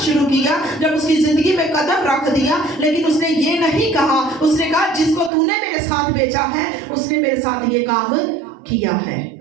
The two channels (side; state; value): left; drops out; at 5.3 s